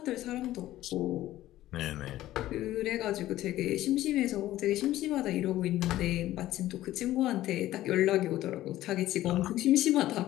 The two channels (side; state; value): right; quieter; 14.7 dB